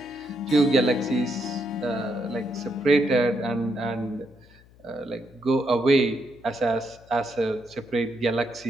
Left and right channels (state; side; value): noise; left; hum, 26 dB below the sound